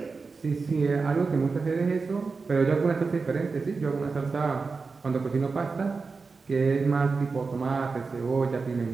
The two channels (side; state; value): left; quieter; 4.5 dB